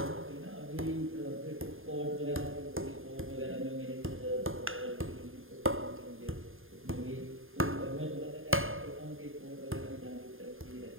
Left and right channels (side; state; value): left; late; 0.59 ms